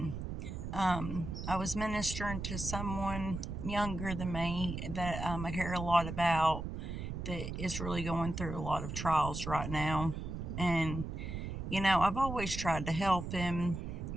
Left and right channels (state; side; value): noise; right; rumble, 5 dB below the sound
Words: and I was ministering to someone younger than me that I care a lot about that is really going through a lot of trials right now, and I've always tried to help him,